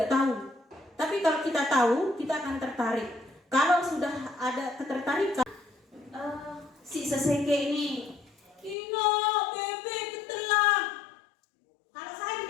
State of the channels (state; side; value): drops out; right; at 8.8 s